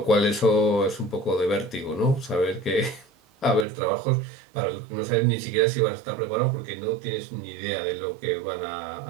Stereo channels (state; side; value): drops out; left; at 3.7 s